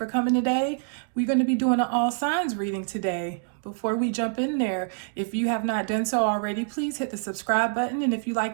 coming today. We're going to be doing an all signs reading today. Before we jump in there, if you have not done so already, please hit the subscribe button. And if you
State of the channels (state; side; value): silent; left; digital silence